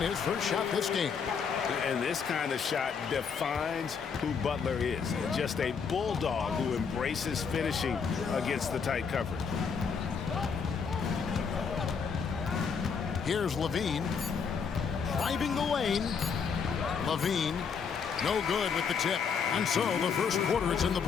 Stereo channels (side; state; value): right; quieter; 6.1 dB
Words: his first shot this game. And this kind of shot defines who Butler is. Just a bulldog who embraces finishing against the tight coverage. Here's Levine. Driving the lane. Levine, no good with the tip. And so the first quarter is in the